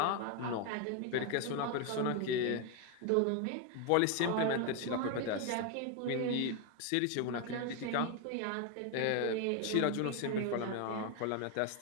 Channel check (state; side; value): different; both; correlation 0.01